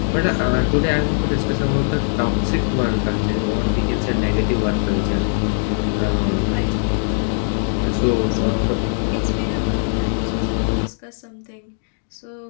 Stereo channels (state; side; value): silent; right; digital silence